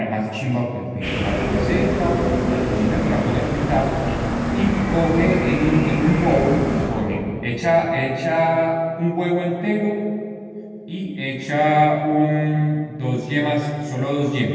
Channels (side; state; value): both; identical; correlation 1.00